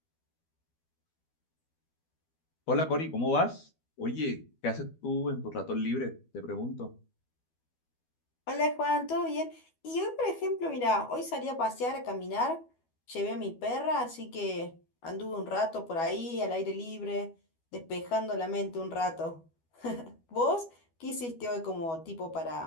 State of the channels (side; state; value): right; late; 12 ms